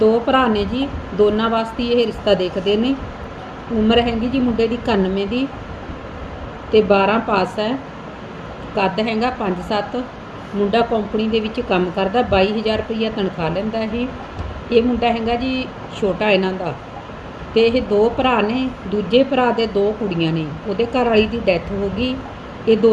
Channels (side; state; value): both; identical; correlation 1.00